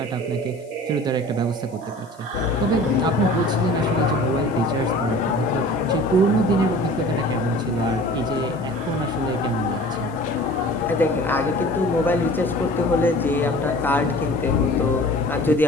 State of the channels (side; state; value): left; noise; hiss, 29 dB below the sound